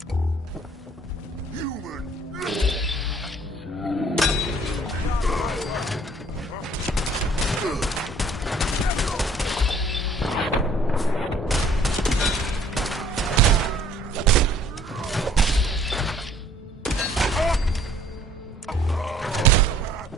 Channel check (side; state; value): both; normal; correlation 0.57